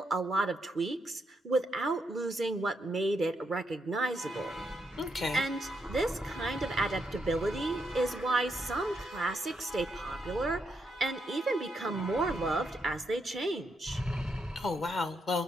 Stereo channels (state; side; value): normal; both; correlation 0.79